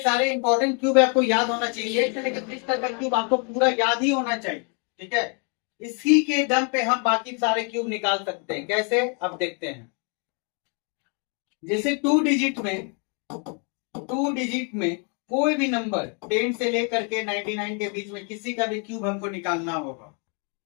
सारे इंपॉर्टेंट क्यूब आपको याद होना चाहिए। 1 से लेकर 30 तक का क्यूब आपको पूरा याद ही होना चाहिए। ठीक है, इसी के दम पे हम बाकी सारे क्यूब निकाल सकते हैं। कैसे, अब देखते हैं। जैसे 2 डिजिट में कोई भी नंबर 10 से लेकर के 99 के बीच में किसी का भी क्यूब हमको निकालना होगा।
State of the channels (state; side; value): quieter; right; 38.3 dB